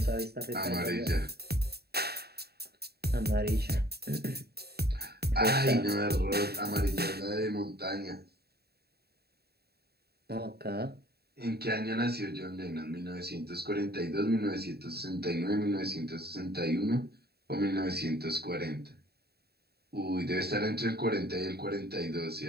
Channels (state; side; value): late; left; 0.46 ms